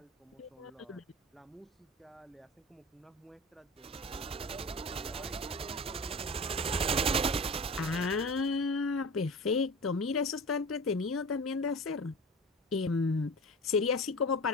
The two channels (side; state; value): both; normal; correlation 0.32